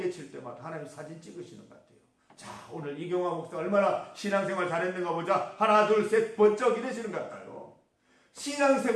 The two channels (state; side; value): identical; both; correlation 1.00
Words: 칠 때마다 하나님 사진 찍으시는 것 같아요. 자, 오늘 이경화 목사 얼마나 신앙생활 잘했는가 보자. 하나 둘 셋 번쩍 이러시는 것 같아요.